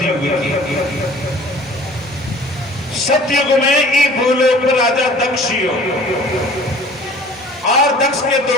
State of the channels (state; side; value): normal; both; correlation 0.48